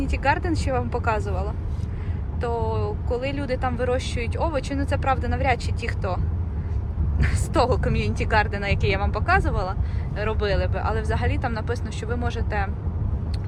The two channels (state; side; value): identical; both; correlation 1.00